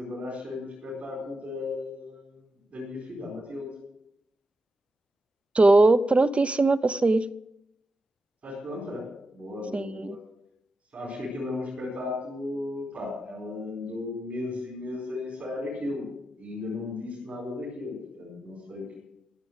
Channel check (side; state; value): both; normal; correlation 0.88